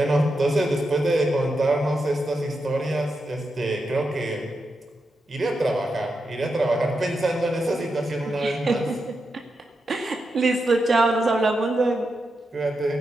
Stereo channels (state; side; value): normal; both; correlation 0.87